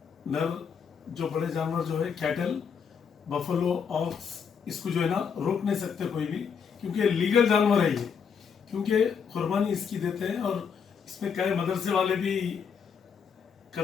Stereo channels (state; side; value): quieter; right; 6.7 dB